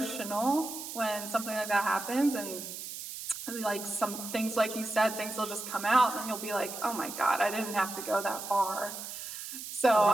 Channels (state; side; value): noise; right; hiss, 9 dB below the sound